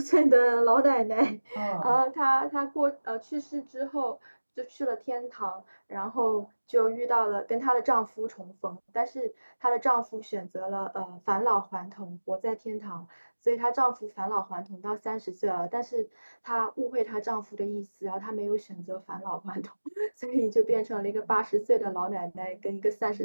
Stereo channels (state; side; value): inverted; both; correlation -1.00